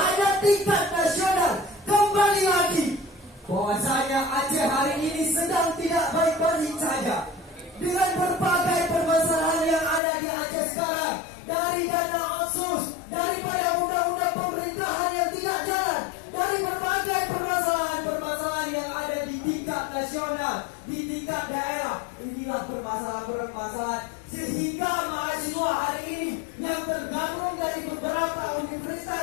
tingkat nasional, kembali lagi bahwasanya Aceh hari ini sedang tidak baik-baik saja. Dengan berbagai permasalahan yang ada di Aceh sekarang, dari dana otsus, daripada undang-undang pemerintahan yang tidak jalan, dari berbagai permasalahan yang ada di tingkat nasional, di tingkat daerah, inilah permasalahan sehingga mahasiswa hari ini yang tergabung dari beberapa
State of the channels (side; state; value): right; drops out; at 10.0 s